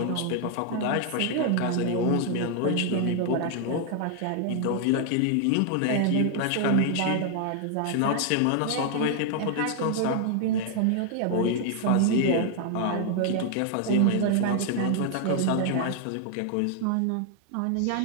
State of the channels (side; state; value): both; different; correlation 0.00